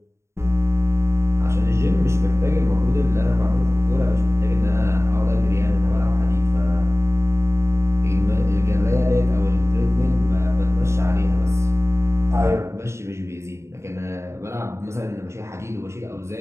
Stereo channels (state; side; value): late; left; 0.13 ms